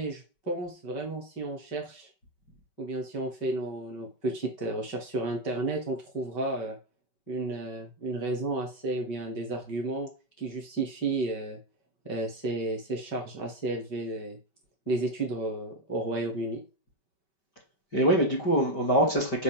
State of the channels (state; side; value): late; right; 5.2 ms